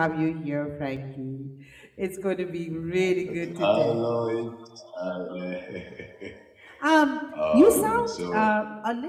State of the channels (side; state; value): both; identical; correlation 1.00